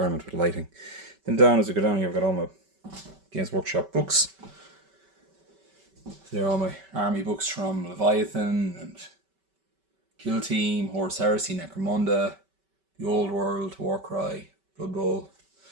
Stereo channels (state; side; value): late; left; 5.2 ms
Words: with lighting. Then down, as we go down here, I've got all my Games Workshop books. They're all my army books from Leviathan and Kill Team, Horus Heresy, Necromunda, The Old World, Warcry, Blood Bowl.